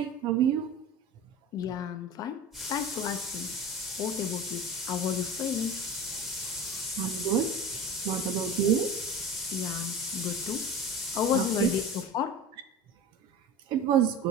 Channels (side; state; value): both; normal; correlation 0.32